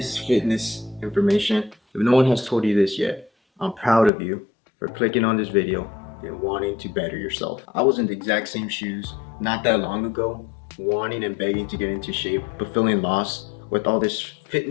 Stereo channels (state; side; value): drops out; right; at 4.1 s